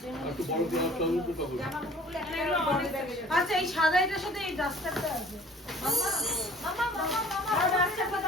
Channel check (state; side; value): normal; both; correlation 0.50